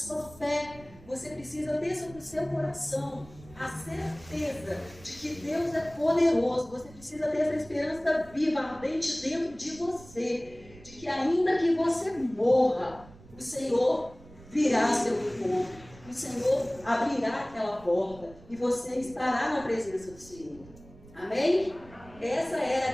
fé. Você precisa ter sobre o seu coração a certeza de que Deus é poderoso. Você precisa ter essa esperança viva, ardente dentro de você, de que ainda que você morra, o Senhor virá ao seu encontro, o Senhor abrirá aquela porta e você estará na presença do Senhor. Amém? Essa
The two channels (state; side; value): noise; right; rumble, 21 dB below the sound